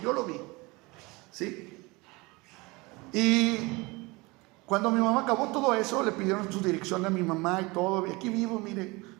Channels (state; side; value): quieter; left; 24.4 dB